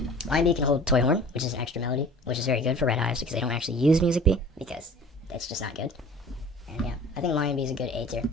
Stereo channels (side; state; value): both; normal; correlation 0.44